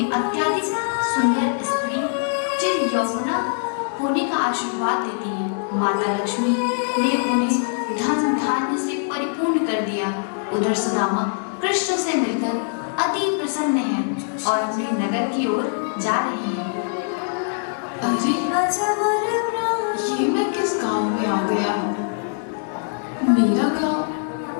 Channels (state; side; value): silent; right; 64 dB below the other